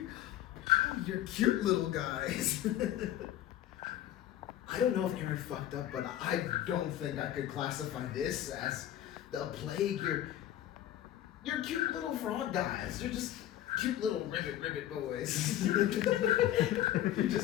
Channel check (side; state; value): right; quieter; 12.4 dB